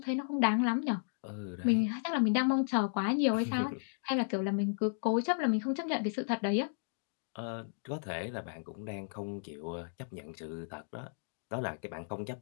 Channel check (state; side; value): silent; right; digital silence